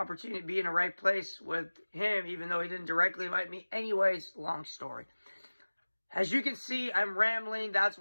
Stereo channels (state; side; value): inverted; both; correlation -1.00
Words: to be in the right place with him, even though he didn't directly invite me. Anyways, long story. As you can see, I'm rambling. That's